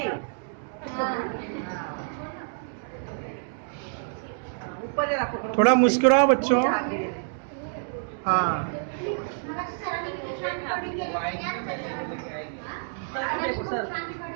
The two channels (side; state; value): left; silent; digital silence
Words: ऊपर जरा पकड़ो। थोड़ा मुस्कुराओ बच्चों। हाँ देखो सर,